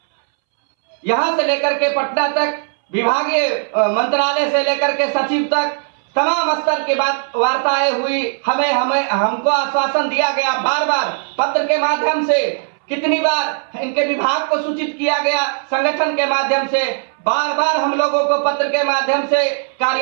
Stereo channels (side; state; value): left; silent; 65 dB below the other